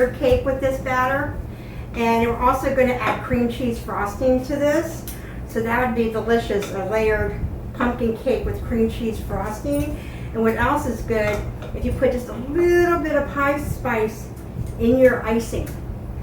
cake with this batter. And we're also going to add cream cheese frosting to this. So that would be delicious, a layered pumpkin cake with cream cheese frosting. And what else is good, if you put just a little bit of pie spice in your icing.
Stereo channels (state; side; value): identical; both; correlation 1.00